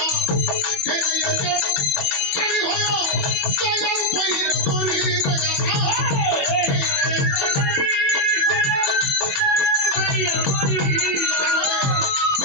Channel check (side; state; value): right; late; 21 ms